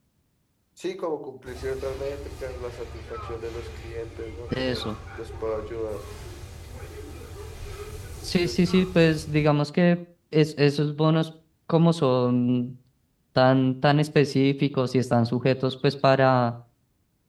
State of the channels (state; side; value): identical; both; correlation 1.00